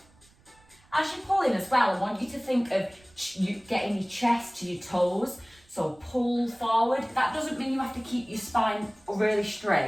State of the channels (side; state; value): right; noise; rumble, 30 dB below the sound